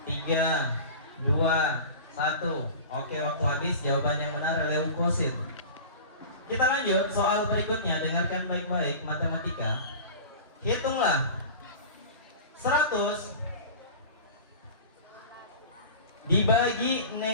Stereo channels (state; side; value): inverted; both; correlation -0.35